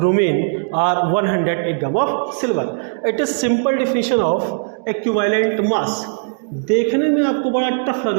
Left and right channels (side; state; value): left; silent; digital silence